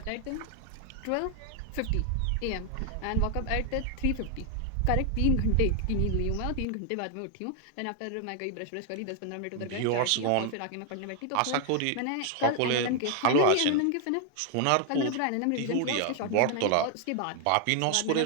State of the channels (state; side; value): different; both; correlation 0.00